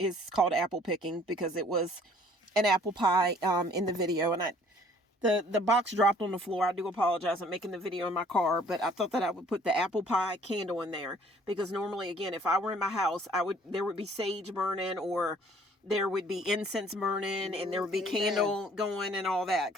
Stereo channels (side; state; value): both; normal; correlation 0.57